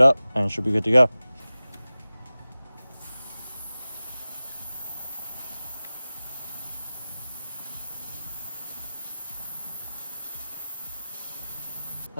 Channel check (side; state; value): both; inverted; correlation -0.97